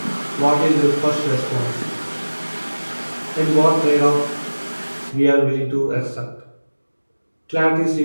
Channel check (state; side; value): inverted; both; correlation -1.00